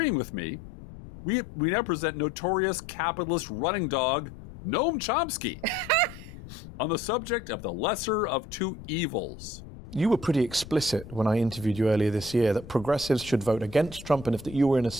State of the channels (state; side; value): noise; left; rumble, 15 dB below the sound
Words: with me, we now present notorious capitalist running dog Noam Chomsky on the subject of the lesser of two evils. You were pretty explicit when I interviewed you earlier this year that progressives should vote against Trump, and if that you were in a